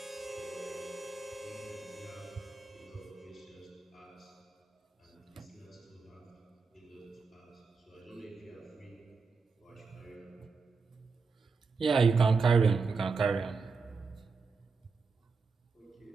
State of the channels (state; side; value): quieter; left; 4.7 dB